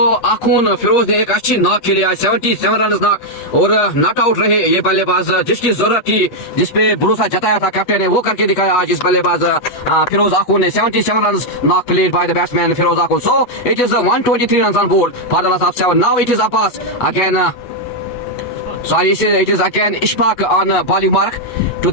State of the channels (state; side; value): late; right; 8.2 ms